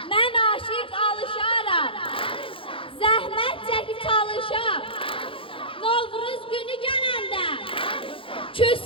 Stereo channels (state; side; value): late; right; 0.26 ms